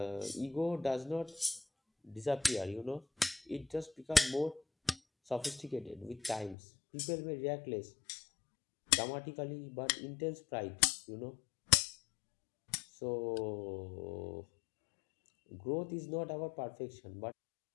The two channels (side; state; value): right; drops out; at 6.6 s